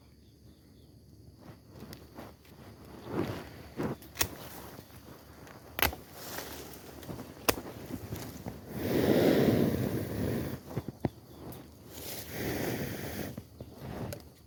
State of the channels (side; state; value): both; identical; correlation 1.00